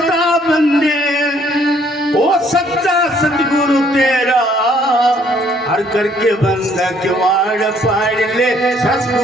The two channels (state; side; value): normal; both; correlation 0.64